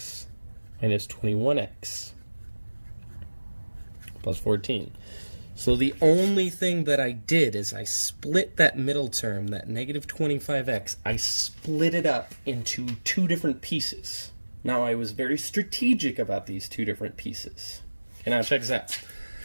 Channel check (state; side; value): inverted; both; correlation -1.00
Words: minus 21x plus 14. So the only thing that I did is I split that middle term, that negative 25x, I split it up into two different pieces. Now I was very strategic about these two different pieces. Okay, now check this out.